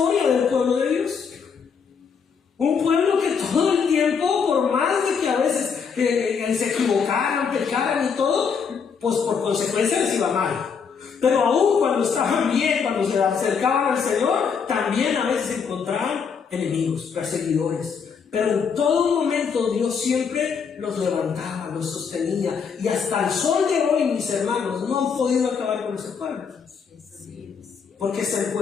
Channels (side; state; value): right; quieter; 6.2 dB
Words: del pueblo de Dios. Un pueblo que todo el tiempo, por más de que a veces se equivocaran, pecaran y todo, pues por consecuencia les iba mal. Pero aún cuando estaban bien, cuando se acercaban al Señor, también a veces encontraban enemigos, perseguidores. Pero en todo momento Dios siempre los levantaba, los sostenía. Y hasta el sol de hoy, mis hermanos, no han podido acabar con ese pueblo. Porque es el